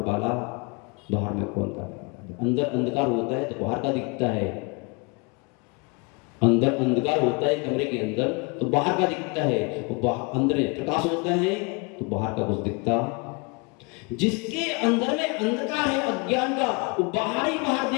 में कौन का? अंदर अंधकार होता है तो बाहर का दिखता है, अंदर अंधकार होता है कमरे के अंदर तो बाहर का दिखता है, अंदर प्रकाश होता है तो बाहर का कुछ दिखता। जिसके अंदर में अंधकार है अज्ञान का, वो बाहर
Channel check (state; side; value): quieter; right; 30.6 dB